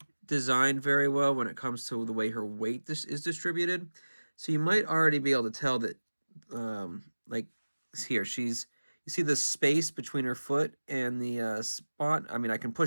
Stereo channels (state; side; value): inverted; both; correlation -1.00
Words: designed very well when it comes to the way her weight is distributed. So you might already be able to tell that, like, here, you see the space between her foot and the spot? I mean, I can